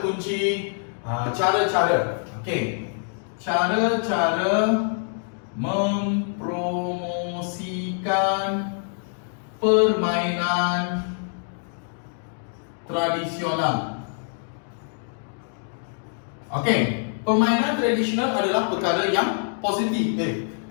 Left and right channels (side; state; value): right; silent; 62 dB below the other